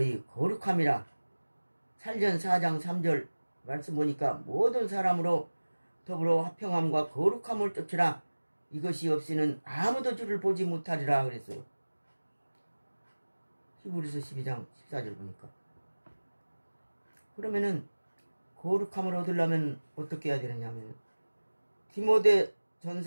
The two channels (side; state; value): both; inverted; correlation -1.00